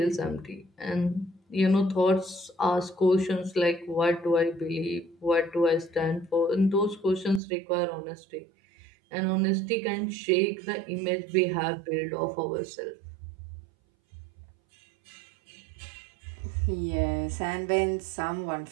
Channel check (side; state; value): left; drops out; at 7.4 s